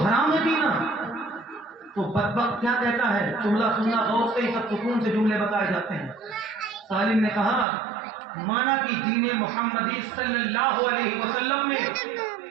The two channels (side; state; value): left; drops out; at 7.7 s